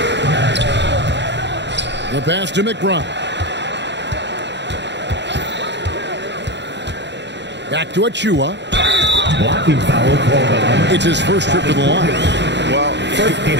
The pass to McBride. Back to Achua. Blocking foul called. It's his first trip to the line. Well, he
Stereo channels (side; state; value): left; late; 0.51 ms